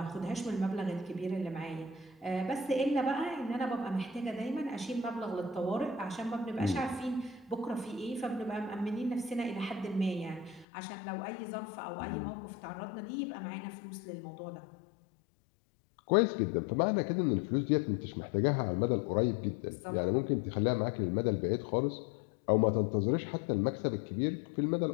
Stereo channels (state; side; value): drops out; right; at 10.7 s